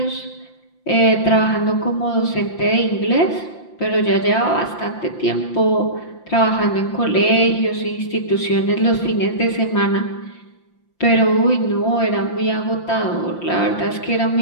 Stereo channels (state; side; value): late; right; 5.8 ms